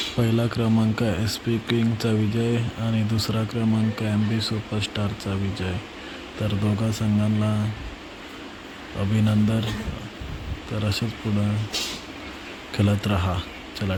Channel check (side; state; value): both; identical; correlation 1.00